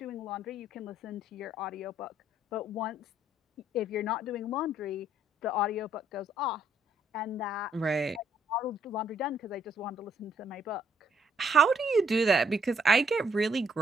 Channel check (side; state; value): both; normal; correlation 0.68